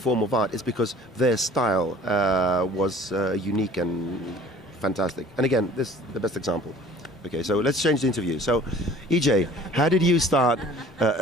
of art is because their style was unique and fantastic. And again, this is the best example. Okay, so let's change the interview. So, EJ, how did you start?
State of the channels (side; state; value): both; normal; correlation 0.49